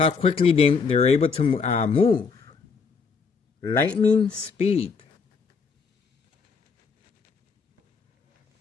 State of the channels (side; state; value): right; quieter; 5.2 dB